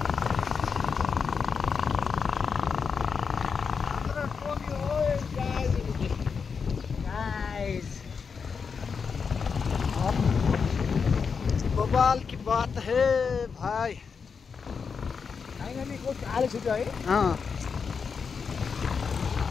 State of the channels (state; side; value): quieter; right; 5.8 dB